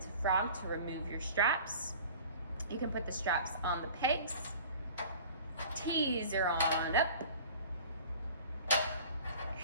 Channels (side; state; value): both; inverted; correlation -0.43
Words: frog to remove your straps. You can put the straps on the pegs. Teaser on up.